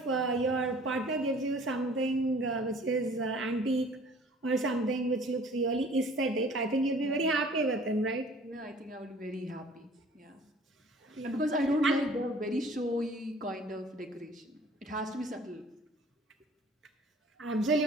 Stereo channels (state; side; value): normal; both; correlation 0.51